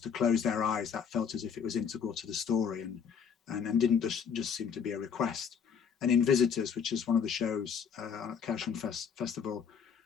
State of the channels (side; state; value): right; quieter; 7.0 dB